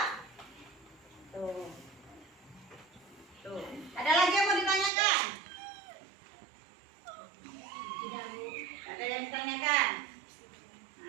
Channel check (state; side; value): drops out; left; at 4.9 s